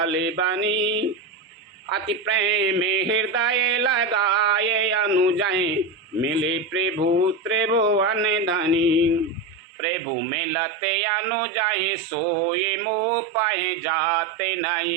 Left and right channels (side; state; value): left; drops out; at 9.6 s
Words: बनी, अति प्रेम हृदय लगाए अनुजय, मिले प्रभु त्रिभुवन धनी। प्रभु मिलते अनुजय सोए मोह पाए, जाते